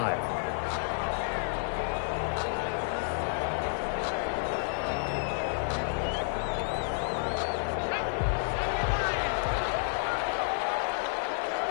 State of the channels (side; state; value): right; silent; digital silence